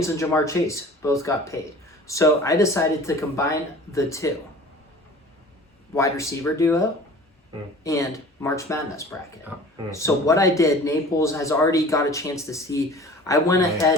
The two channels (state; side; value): normal; both; correlation 0.43